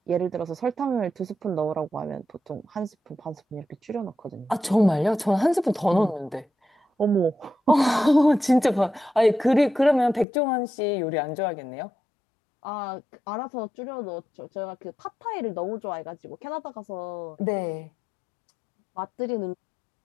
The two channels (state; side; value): drops out; right; at 10.2 s